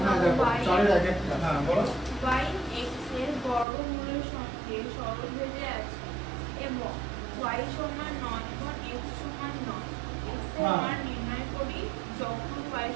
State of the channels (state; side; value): drops out; left; at 3.7 s